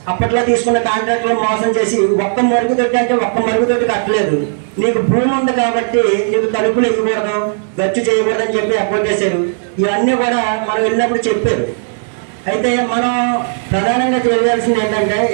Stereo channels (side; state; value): left; silent; digital silence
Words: అప్పట్లో తీసుకున్న కాంట్రాక్టులు మోసం చేసి ఒక్క మరుగుదొడ్డి అంటే ఒక్క మరుగుదొడ్డి కట్టలేదు. నీకు భూమి ఉంది కాబట్టి నీకు తలుపులు ఇవ్వకూడదు, గచ్చు చేయకూడదు అని చెప్పి అపోర్ట్ చేశారు. ఇవన్నీ కూడా మనం వెళ్ళినప్పుడు చెప్పారు. అయితే మనం ప్రధానంగా తెలియాల్సింది ఏంటంటే,